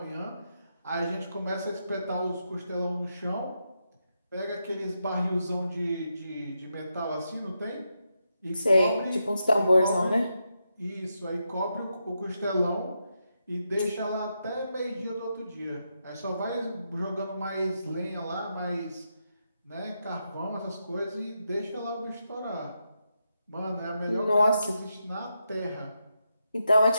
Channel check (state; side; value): inverted; both; correlation -0.85